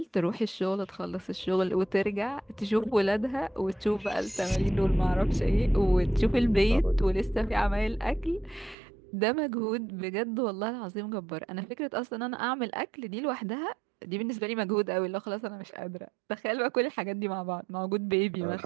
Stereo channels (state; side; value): drops out; left; at 8.8 s